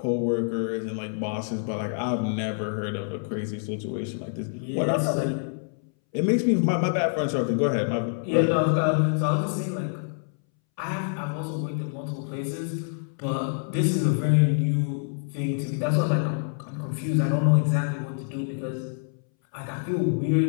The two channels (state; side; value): silent; right; 60 dB below the other